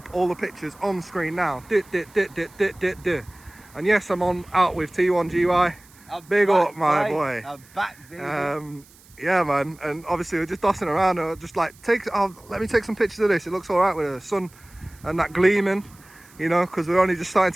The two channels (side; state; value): right; noise; hiss, 26 dB below the sound